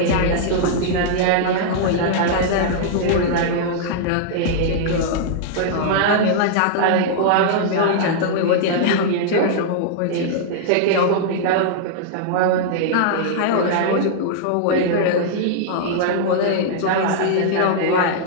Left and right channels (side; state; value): both; different; correlation -0.01